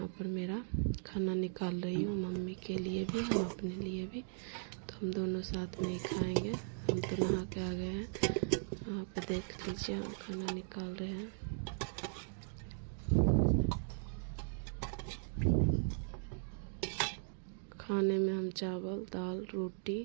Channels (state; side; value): silent; left; digital silence